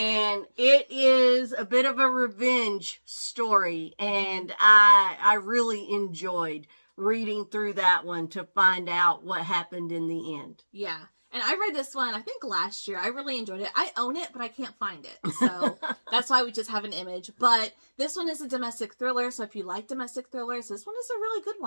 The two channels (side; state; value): both; inverted; correlation -1.00